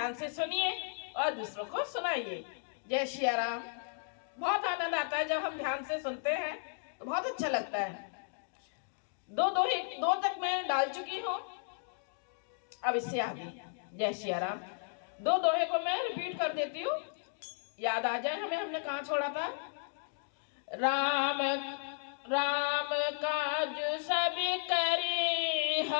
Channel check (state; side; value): silent; right; digital silence